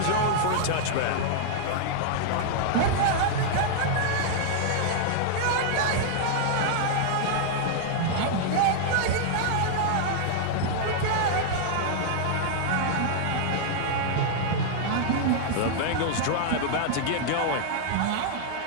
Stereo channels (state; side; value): different; both; correlation -0.01